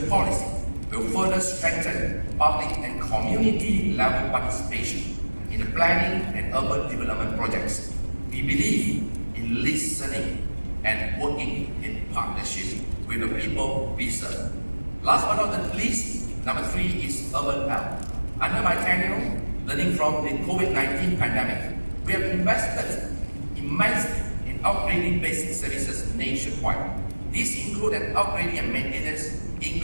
Policy will further strengthen public and community level participation in the planning and urban development projects. We believe in listening and working in partnership with the people we serve. Last but not least, number 3 is urban health. Under my tenure, learning from the COVID-19 pandemic, we have invested immensely in upgrading basic services nationwide. These include an upgrading and maintenance,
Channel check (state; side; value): inverted; both; correlation -1.00